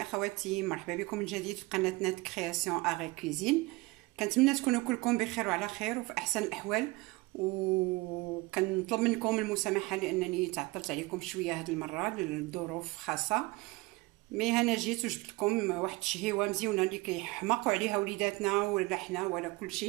اخواتي، مرحبا بكم من جديد في قناتنا كرياسيون اغي كوزين. كنتمنى تكونوا كلكم بخير وعلى خير وفي احسن الاحوال، وكنطلب منكم المسامحه لانني تعطلت عليكم شويه هذه المره لظروف خاصه. مي انا جيت وجبت لكم واحد الشهيوه مزيونه اللي كيحماقوا عليها وليداتنا ولا حنا ولا كل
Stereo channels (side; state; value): left; quieter; 22.6 dB